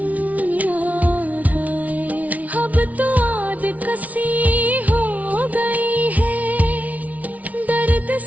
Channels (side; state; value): left; late; 0.071 ms